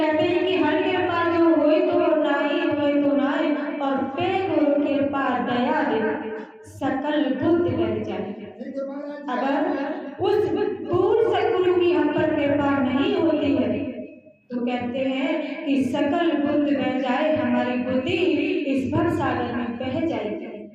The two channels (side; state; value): both; identical; correlation 1.00